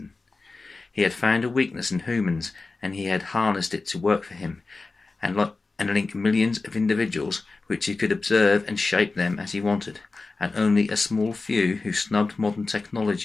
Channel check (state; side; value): quieter; right; 3.7 dB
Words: He had found a weakness in humans, and he had harnessed it to work for him, and link millions of individuals, which he could observe and shape them as he wanted, and only a small few who snubbed modern